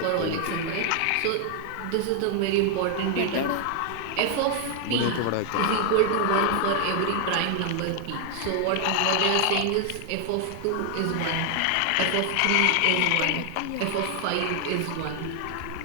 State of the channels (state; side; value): different; both; correlation 0.00